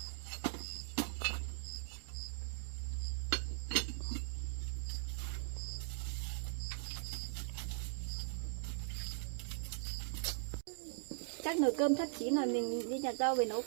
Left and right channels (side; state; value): left; silent; digital silence